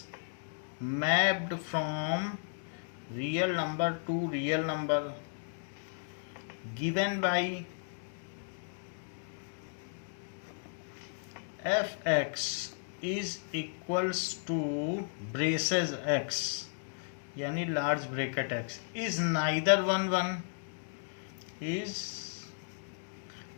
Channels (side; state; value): right; silent; digital silence